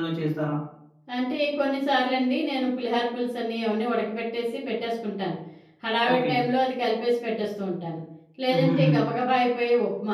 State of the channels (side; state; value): both; identical; correlation 1.00